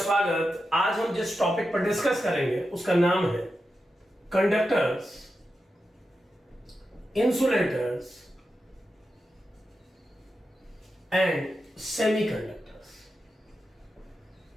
आज हम जिस टॉपिक पर डिस्कस करेंगे उसका नाम है conductors, insulators and semiconductors.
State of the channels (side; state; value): both; normal; correlation 0.90